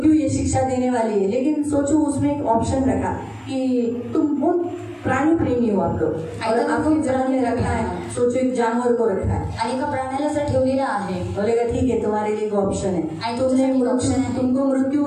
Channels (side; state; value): both; identical; correlation 1.00